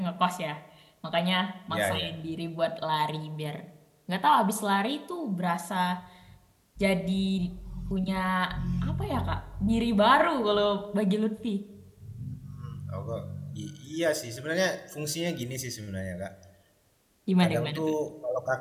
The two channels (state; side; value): identical; both; correlation 1.00